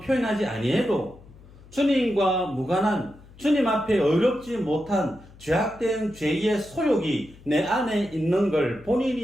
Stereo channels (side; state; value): left; noise; hum, 22 dB below the sound